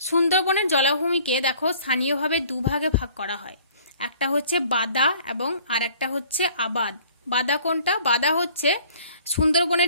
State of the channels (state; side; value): inverted; both; correlation -0.54